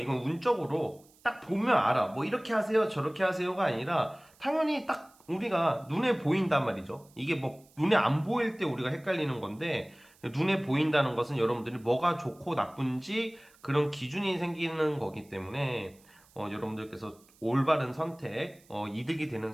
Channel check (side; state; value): right; noise; hiss, 29 dB below the sound